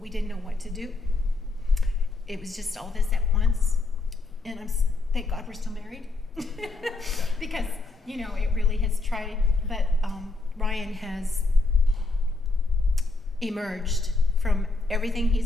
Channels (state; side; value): quieter; right; 3.4 dB